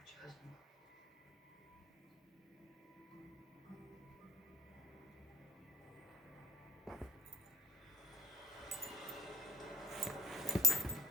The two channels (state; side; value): normal; both; correlation 0.53